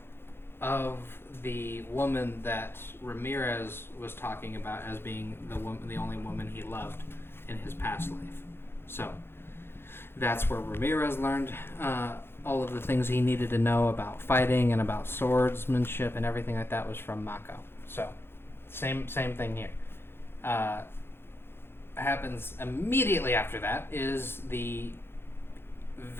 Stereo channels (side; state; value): right; late; 0.11 ms